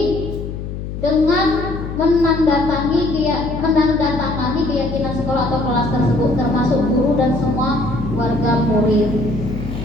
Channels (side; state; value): left; noise; hum, 7 dB below the sound